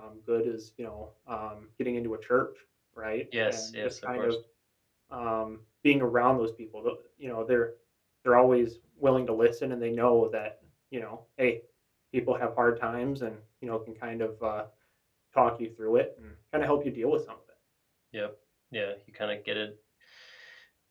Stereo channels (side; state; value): both; identical; correlation 1.00